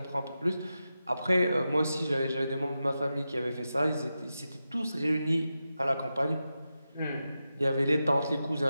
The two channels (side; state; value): both; inverted; correlation -0.91